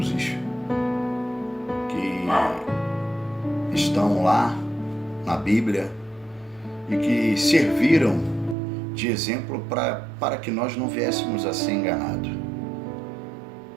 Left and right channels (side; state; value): left; drops out; at 8.6 s